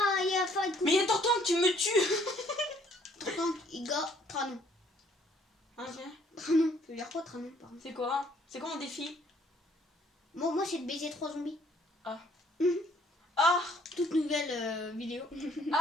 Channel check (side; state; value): both; normal; correlation 0.63